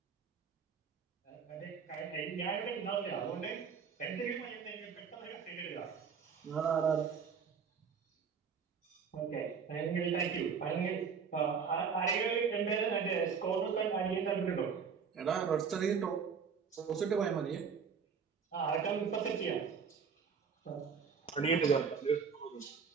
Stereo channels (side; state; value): left; quieter; 6.3 dB